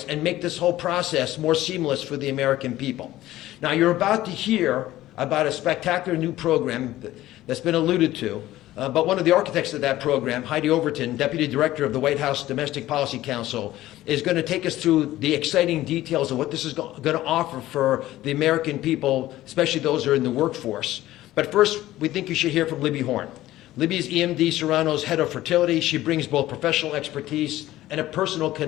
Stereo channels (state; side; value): quieter; right; 15.3 dB